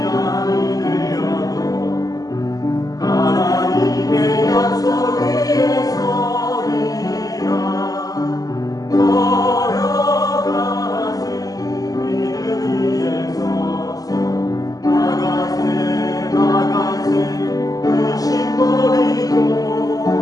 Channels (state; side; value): late; right; 0.17 ms